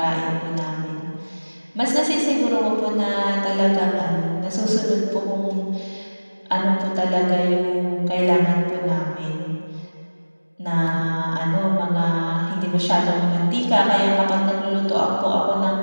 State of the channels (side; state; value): both; inverted; correlation -1.00